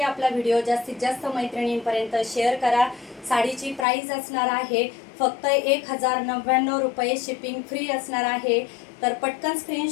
आपला व्हिडिओ जास्तीत जास्त मैत्रिणींपर्यंत शेअर करा। साडीची प्राइस असणार आहे फक्त 1099 रुपये, शिपिंग फ्री असणार आहे। तर पटकन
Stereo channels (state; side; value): drops out; right; at 3.9 s